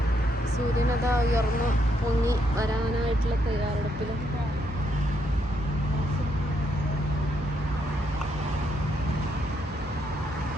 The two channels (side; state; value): both; normal; correlation 0.76